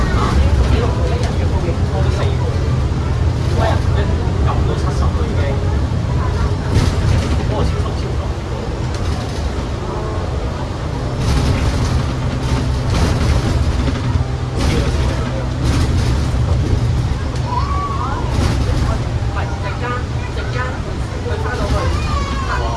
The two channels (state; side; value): identical; both; correlation 1.00